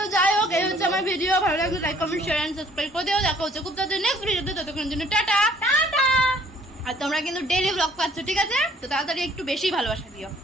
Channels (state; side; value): normal; both; correlation 0.59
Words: যাই হোক, এই হচ্ছে আমার ভিডিও। ভালো লাগলে like comment share and subscribe করে দিও। দেখা হচ্ছে খুব তাড়াতাড়ি নেক্সট ভিডিওতে, ততক্ষণের জন্য টাটা টাটা। আর তোমরা কিন্তু ডেইলি ব্লগ পাচ্ছ, ঠিক আছে, তো তাড়াতাড়ি একটু বেশি ভালোবাসা দিও।